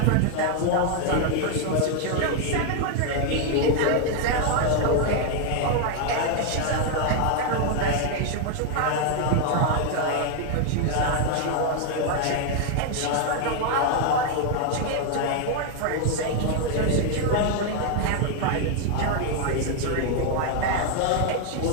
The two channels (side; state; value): both; different; correlation 0.00